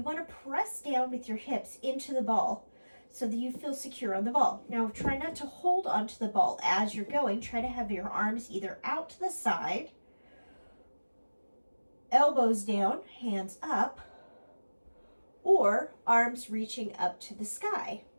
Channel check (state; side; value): inverted; both; correlation -1.00